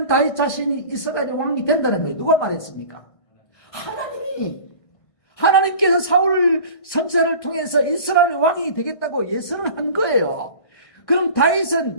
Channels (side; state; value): right; late; 1.5 ms